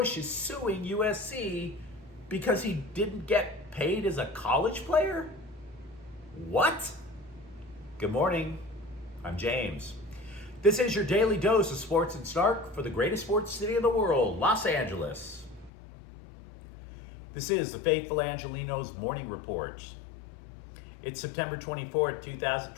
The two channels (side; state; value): right; drops out; at 15.7 s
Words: is suing USC because he didn't get paid as a college player? What? Good morning. I'm James. This is your daily dose of sports and snark for the greatest sports city in the world, Los Angeles. This is the Faithful Angelenos Morning Report. It's September 24th,